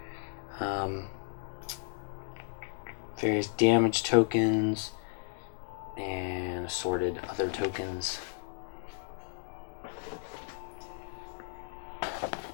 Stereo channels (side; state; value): right; silent; digital silence